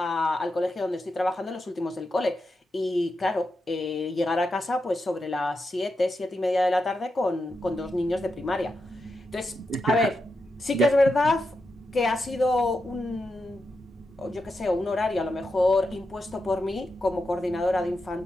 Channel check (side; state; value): both; normal; correlation 0.87